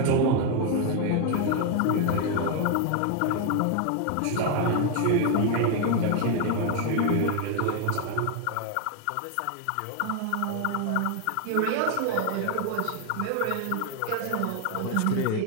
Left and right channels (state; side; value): different; both; correlation 0.01